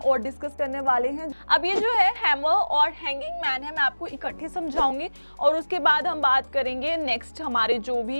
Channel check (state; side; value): inverted; both; correlation -1.00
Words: डिस्कस करने वाले हैं। अब ये जो है हैमर और हैंगिंग मैन है, मैं आपको इकट्ठे समझाऊंगी और उसके बाद हम बात करेंगे नेक्स्ट हमारे जो